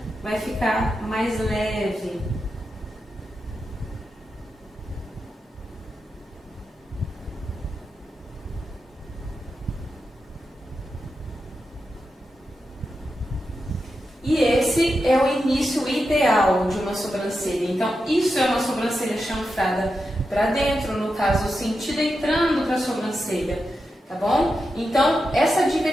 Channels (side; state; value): both; normal; correlation 0.88